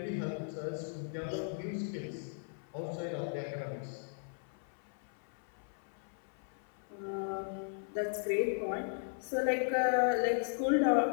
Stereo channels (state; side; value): silent; right; 53 dB below the other